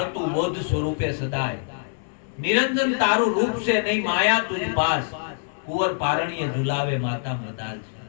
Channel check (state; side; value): silent; right; 58 dB below the other